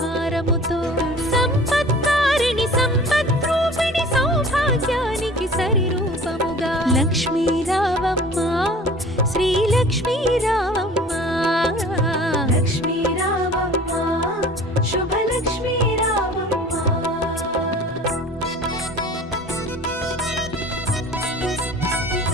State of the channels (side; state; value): both; normal; correlation 0.45